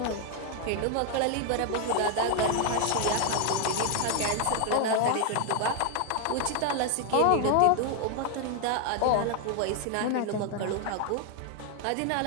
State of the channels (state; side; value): different; both; correlation 0.01